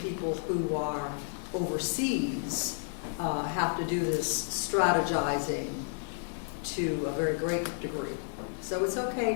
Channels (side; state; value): right; silent; digital silence